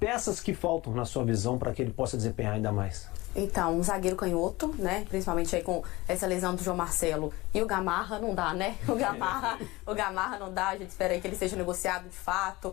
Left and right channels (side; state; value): right; quieter; 20.9 dB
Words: que faltam na sua visão para que ele possa desempenhar ainda mais? Então, um zagueiro canhoto, né? Principalmente aí com essa lesão do João Marcelo. E o Gamarra não dá, né? O Gamarra não dá, a gente espera aí que ele seja negociado de